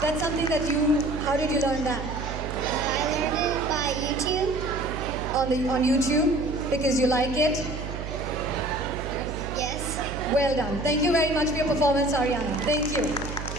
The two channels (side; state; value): right; noise; hum, 7 dB below the sound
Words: That's something that how did you learn that? I learned it by YouTube. On YouTube? Because you like it? Yes. Well done. Thank you very much for your performance, Ariana. Thank you.